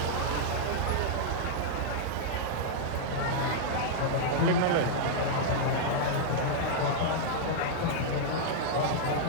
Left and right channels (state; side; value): different; both; correlation -0.01